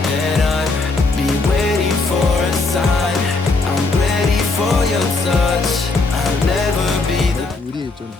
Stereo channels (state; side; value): quieter; right; 3.7 dB